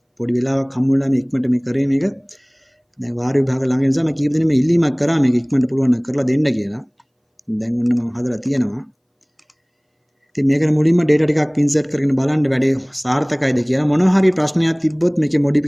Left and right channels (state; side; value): identical; both; correlation 1.00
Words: පොඩි වෙලාවක් හම්බුනලා මේ ඉක්මනට මේ කරේ මේක. දැන් වාර විභාග ළඟ නිසා මම කීප දෙනෙක් මේ ඉල්ලීමක් කරා මේක ඉක්මනට පුළුවන් නම් කරලා දෙන්න කියලා. දැන් ඔන්න මම හදලා තියෙනවා. ඉතින් මේකට මුලින්ම data ටිකක් insert කරගෙන බලන්න වැඩේ සාර්ථකයිද කියලා. මොනවා හරි ප්‍රශ්නයක් තිබ්බොත් මේකේ